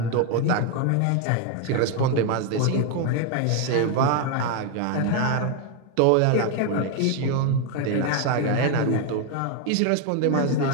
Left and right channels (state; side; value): different; both; correlation 0.01